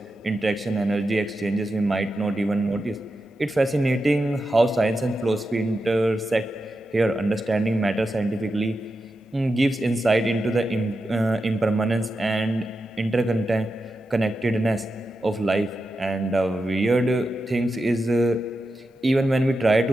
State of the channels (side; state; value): both; normal; correlation 0.89